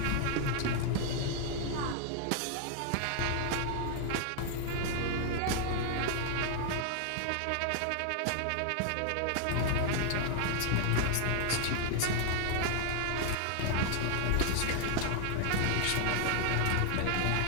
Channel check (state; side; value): different; both; correlation 0.00